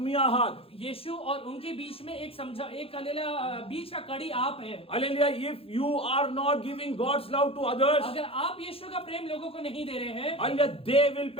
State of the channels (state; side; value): late; right; 0.27 ms